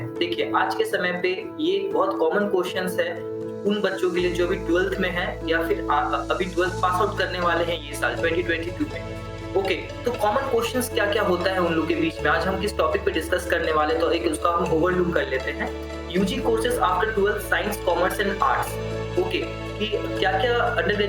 देखिए आज के समय पे ये बहुत कॉमन क्वेश्चंस है उन बच्चों के लिए जो अभी 12th में है या फिर अभी 12th पास आउट करने वाले हैं ये साल 2022 में। ओके, तो कॉमन क्वेश्चंस क्या क्या होता है उन लोग के बीच में आज हम किस टॉपिक पे डिस्कस करने वाले, तो एक उसका हम ओवरलुक कर लेते हैं। UG courses after 12th science commerce and arts. Okay, कि क्या क्या अंडर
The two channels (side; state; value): both; identical; correlation 1.00